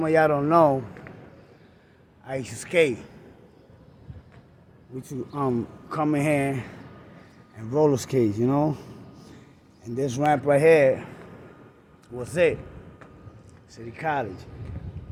of y'all don't know, I used to skate. We used to come in here and roller skate, you know? And this ramp right here was it. City College.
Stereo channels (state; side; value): identical; both; correlation 1.00